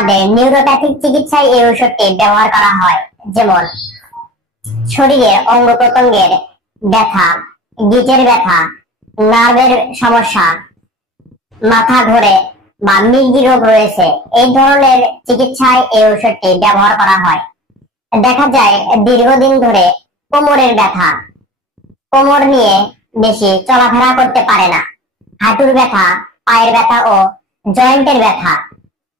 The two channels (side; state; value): both; normal; correlation 0.39